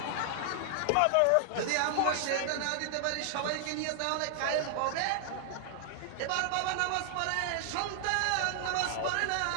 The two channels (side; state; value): both; different; correlation 0.00